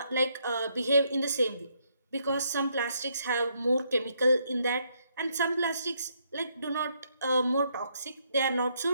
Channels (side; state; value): both; inverted; correlation -0.74